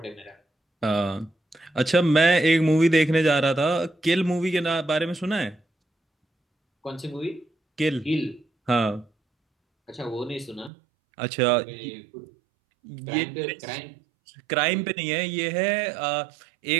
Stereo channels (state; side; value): drops out; left; at 10.7 s